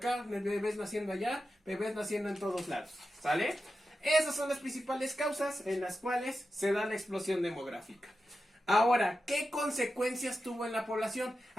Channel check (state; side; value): normal; both; correlation 0.91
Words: bebés naciendo allá, bebés naciendo en todos lados, ¿sale? Esas son las principales causas en las cuales se da la explosión demográfica. Ahora, ¿qué consecuencias tuvo en la población?